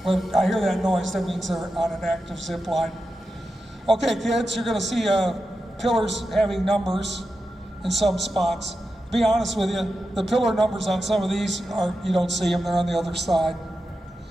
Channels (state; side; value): normal; both; correlation 0.90